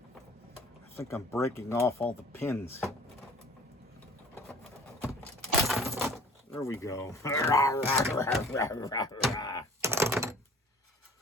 I'm breaking off all the pins. There we go.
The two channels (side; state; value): both; normal; correlation 0.48